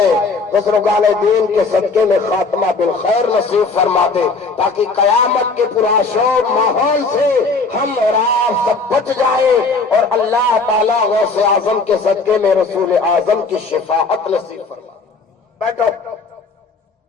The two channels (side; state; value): right; quieter; 4.1 dB